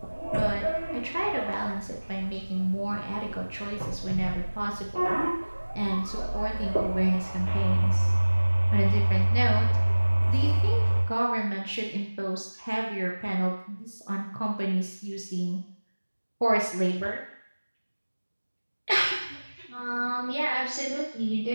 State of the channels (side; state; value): both; inverted; correlation -1.00